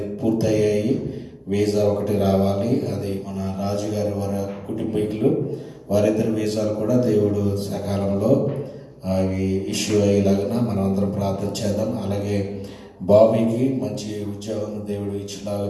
పూర్తయ్యాయి. వీసా ఒకటి రావాలి. అది మన రాజుగారి వారి కుటుంబీకులు వారిద్దరి వీసాలు కూడా దేవుడు సకాలంలో అవి ఇష్యూ అయ్యేలాగా మనం అందరం ప్రార్థన చేద్దాం. అలాగే బాబీకి మంచి ఉద్యోగం దేవుడు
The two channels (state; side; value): identical; both; correlation 1.00